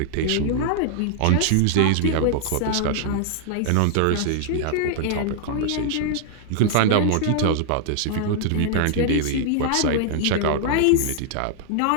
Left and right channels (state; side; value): different; both; correlation -0.01